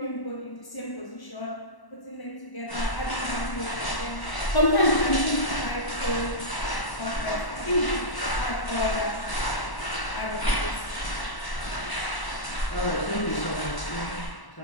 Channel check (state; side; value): late; right; 1.1 ms